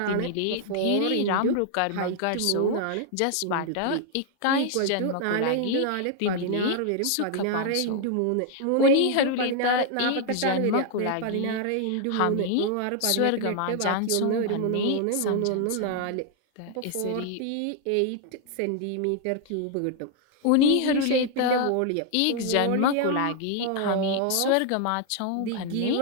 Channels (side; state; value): both; different; correlation 0.00